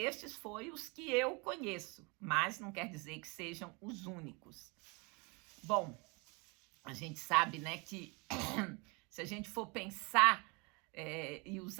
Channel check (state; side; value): quieter; left; 29.6 dB